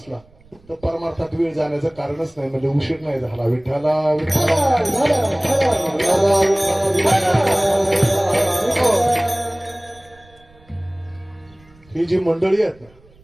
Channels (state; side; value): noise; right; rumble, 28 dB below the sound